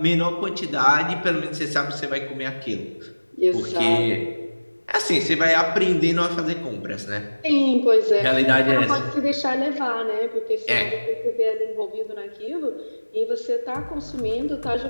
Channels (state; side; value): inverted; both; correlation -1.00